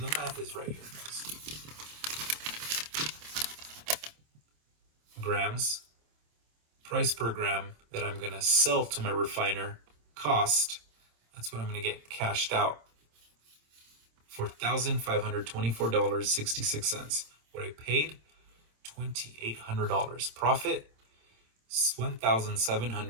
the math is right here, guys. Grams, price per gram that I'm going to sell to my refiner, cost, that's what I'm going to get cashed out for $1,524.66. What I paid, $2,800. Profit,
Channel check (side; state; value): left; late; 26 ms